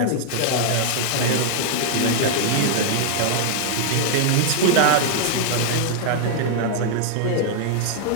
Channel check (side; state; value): both; different; correlation -0.01